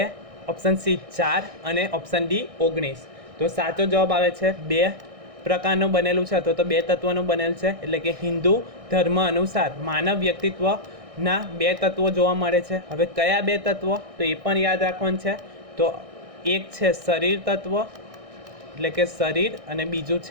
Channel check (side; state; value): left; late; 1.6 ms